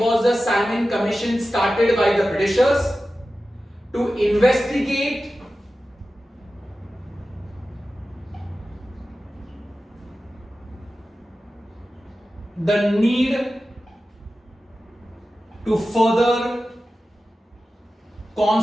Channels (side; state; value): both; normal; correlation 0.94